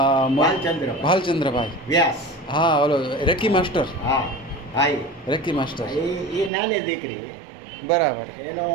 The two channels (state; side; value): drops out; left; at 6.5 s